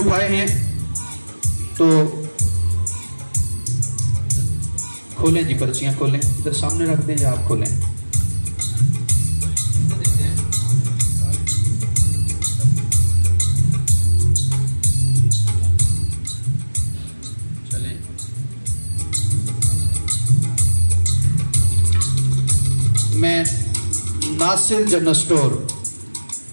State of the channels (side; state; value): both; inverted; correlation -1.00